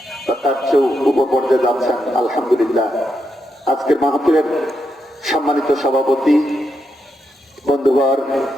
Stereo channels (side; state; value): both; normal; correlation 0.83